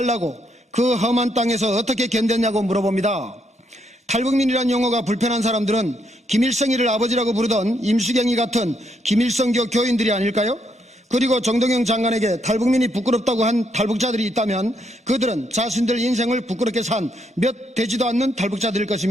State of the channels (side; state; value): both; normal; correlation 0.76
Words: 그 험한 땅에서 어떻게 견뎠냐고 물어봅니다. 탈북민이란 용어가 불편한 사람들은 김일성이를 아버지라고 부르던 임수경이 같은 김일성교 교인들이 아닐까요? 그리고 정동영 장관에게 탈북민이 부끄럽다고 한 탈북자들이 있다면 그들은 자신들 인생을 부끄럽게 산 몇 되지도 않는 탈북자들일